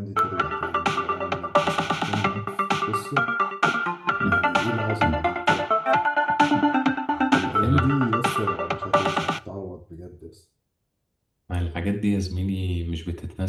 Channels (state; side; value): identical; both; correlation 1.00